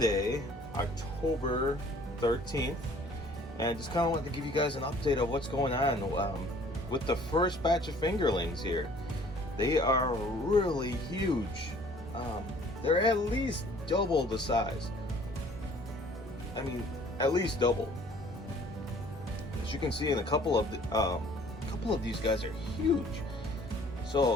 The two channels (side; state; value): both; normal; correlation 0.54